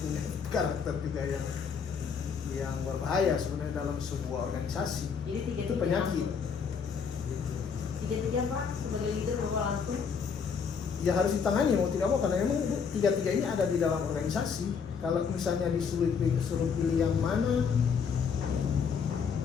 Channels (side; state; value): right; quieter; 6.2 dB